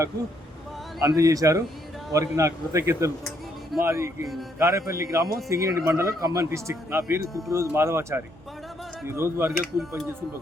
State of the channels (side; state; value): both; normal; correlation 0.72